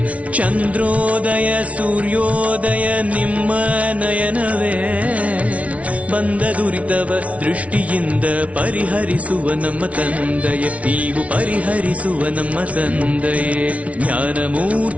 ಚಂದ್ರೋದಯ ಸೂರ್ಯೋದಯ ನಿಮ್ಮ ನಯನವೇ ಬಂದ ದುರಿತವ ದೃಷ್ಟಿಯಿಂದ ಪರಿಹರಿಸುವ ನಮ್ಮ ತಂದೆಯೇ ನೀವು ಪರಿಹರಿಸುವ ನಮ್ಮ ತಂದೆಯೇ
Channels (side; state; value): left; late; 0.065 ms